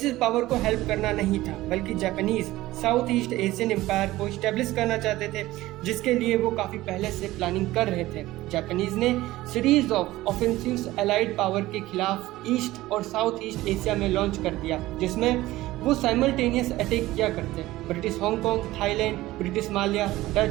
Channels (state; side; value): quieter; left; 17.1 dB